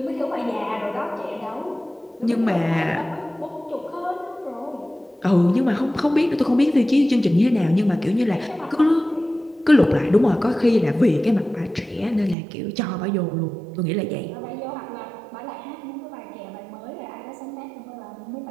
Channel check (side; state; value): left; drops out; at 12.4 s